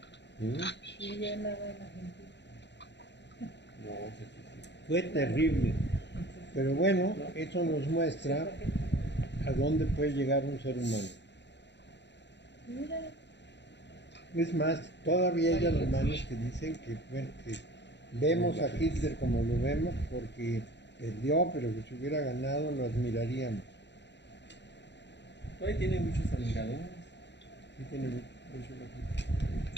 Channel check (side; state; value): right; late; 0.51 ms